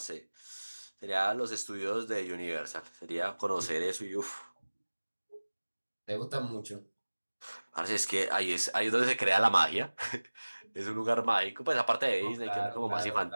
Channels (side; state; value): both; inverted; correlation -1.00